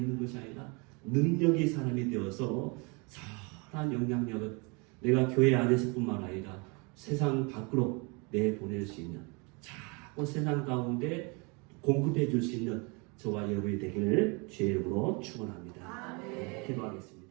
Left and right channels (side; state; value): left; quieter; 30.6 dB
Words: 것이 아니라 능력이 사람이 되어서 선한 영향력을 내가 교회 안에서뿐만 아니라 세상 밖으로 내보낼 수 있는, 자꾸 세상 가운데 공급해 줄 수 있는 저와 여러분이 되기를 주의 이름으로 축원합니다. 기도하겠습니다.